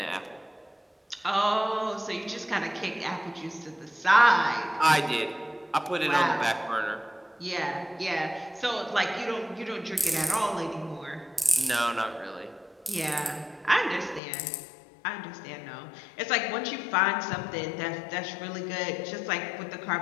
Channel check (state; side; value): drops out; right; at 14.2 s